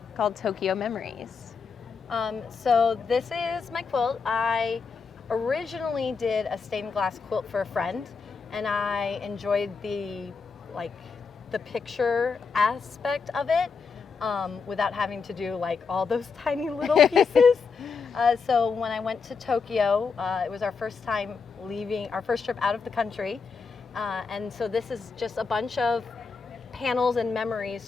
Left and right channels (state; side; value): quieter; right; 5.1 dB